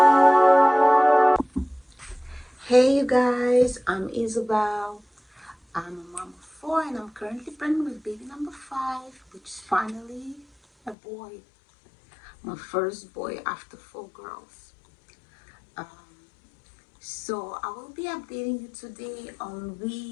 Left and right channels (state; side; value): drops out; right; at 11.0 s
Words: you guys, I'm Isabel. I'm a mom of four and I'm currently pregnant with baby number five, which is finally a boy. My first boy after four girls. Um, so I will be updating you today on